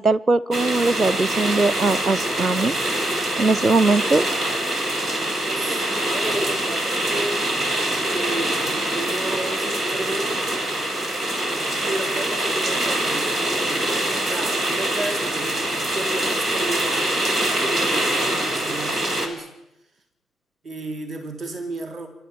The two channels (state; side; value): normal; both; correlation 0.79